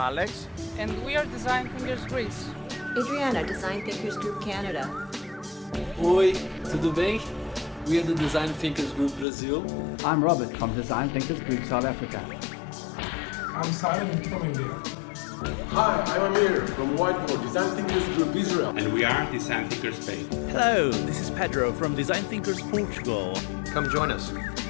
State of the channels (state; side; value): drops out; right; at 9.2 s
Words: and we are DesignThinkers Greece. Adriana, DesignThinkers Group Canada. Oi, tudo bem? We are the DesignThinkers Group Brazil. I'm Robert from DesignThinkers Group South Africa. I'm Simon from India. Hi, I'm Amir from Whiteboard, DesignThinkers Group Israel. And we are DesignThinkers Spain. Hello, this is Pedro from DesignThinkers Portugal. Come join us.